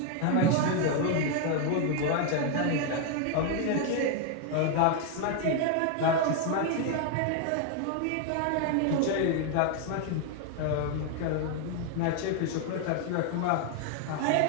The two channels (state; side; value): different; both; correlation 0.00